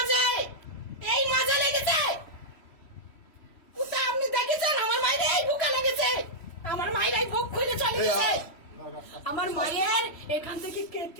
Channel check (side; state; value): right; late; 3.1 ms